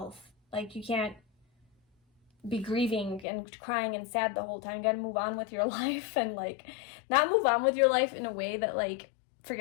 Like you can't be grieving and crying and sad the whole time. You gotta move on with your life, and like not move on with your life in a way that like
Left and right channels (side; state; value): right; drops out; at 3.2 s